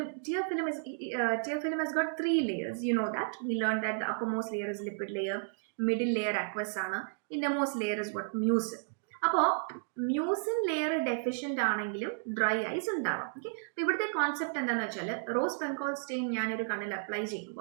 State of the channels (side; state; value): left; silent; digital silence